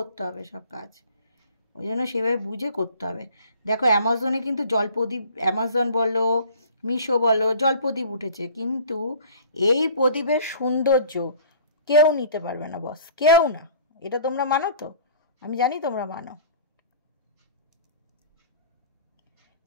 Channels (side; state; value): both; inverted; correlation -0.48